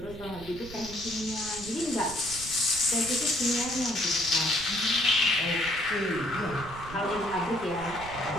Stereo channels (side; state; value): right; noise; rumble, 14 dB below the sound